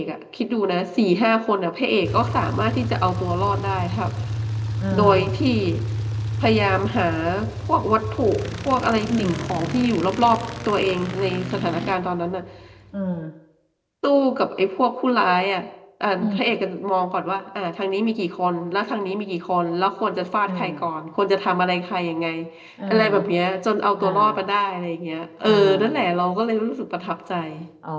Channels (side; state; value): both; identical; correlation 1.00